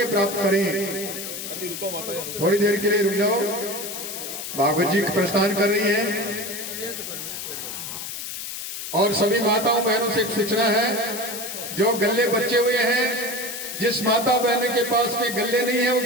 प्राप्त करें। थोड़ी देर के लिए रुक जाओ, भागवत जी प्रस्थान कर रही है। और सभी माताओं बहनों से एक सूचना है, जो गल्ले बचे हुए हैं, जिस माता बहन के पास में गल्ले नहीं है वो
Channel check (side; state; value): left; noise; hiss, 7 dB below the sound